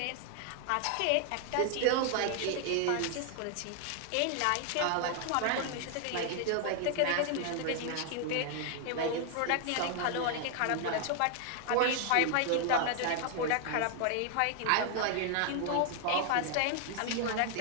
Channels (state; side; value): different; both; correlation 0.00